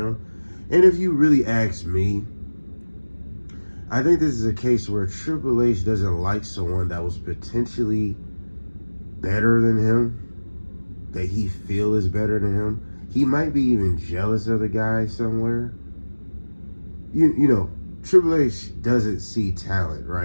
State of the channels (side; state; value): both; inverted; correlation -1.00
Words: And if you really ask me, I think this is a case where Triple H doesn't like someone that was potentially better than him, that he feel is better than him. He might be even jealous of the guy somewhere. You know, Triple H doesn't see talent,